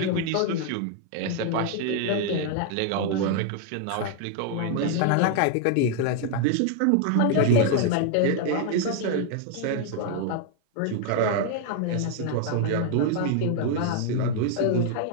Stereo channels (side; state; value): both; different; correlation 0.00